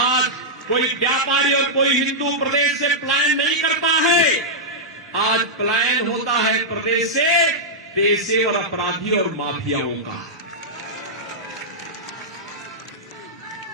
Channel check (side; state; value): both; normal; correlation -0.08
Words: कोई व्यापारी और कोई हिंदू प्रदेश से पलायन नहीं करता है, आज पलायन होता है प्रदेश से पेशेवर अपराधी और माफियाओं का।